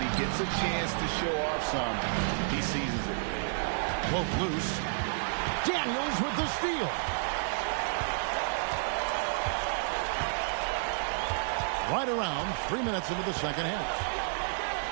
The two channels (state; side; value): silent; left; digital silence